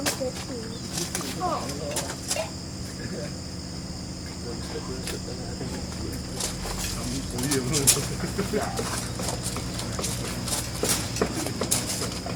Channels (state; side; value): identical; both; correlation 1.00